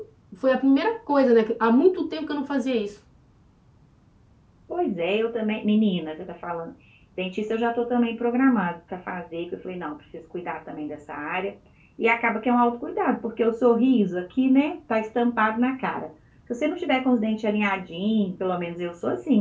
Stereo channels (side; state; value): both; identical; correlation 1.00